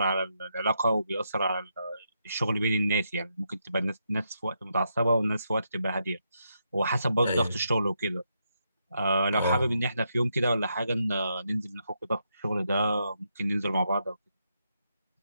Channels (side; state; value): both; inverted; correlation -0.81